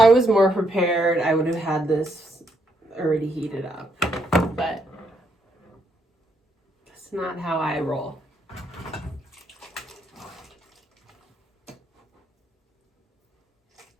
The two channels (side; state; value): both; normal; correlation 0.75